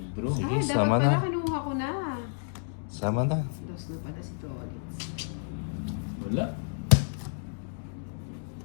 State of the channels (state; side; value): silent; right; digital silence